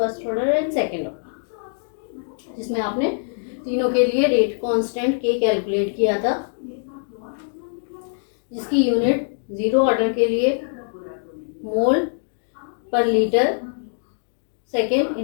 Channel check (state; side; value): silent; right; digital silence